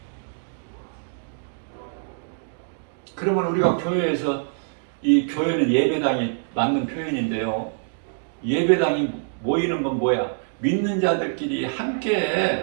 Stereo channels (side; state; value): left; silent; digital silence